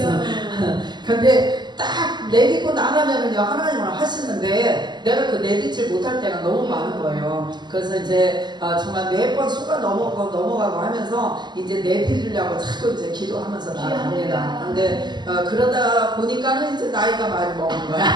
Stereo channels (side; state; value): left; late; 0.21 ms